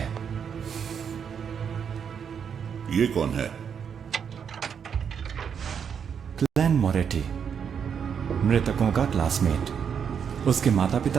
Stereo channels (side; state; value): left; quieter; 7.3 dB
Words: ये कौन है? क्लैन मोरेटी, मृतकों का क्लासमेट। उसके माता